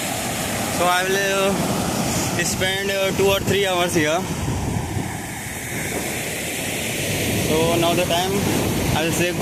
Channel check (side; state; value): both; identical; correlation 1.00